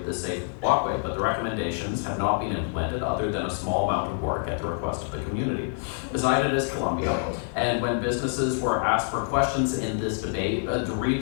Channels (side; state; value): right; silent; 60 dB below the other